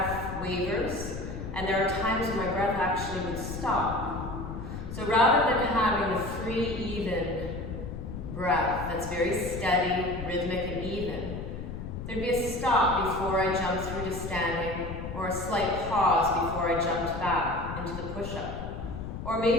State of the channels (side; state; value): left; noise; rumble, 7 dB below the sound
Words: wavers, and there are times when my breath actually would stop. So rather than having a free, even breath that's very steady, rhythmic, and even, there'd be a stop before I jumped through to standing, or a slight pause before I jumped back into the push-up. Or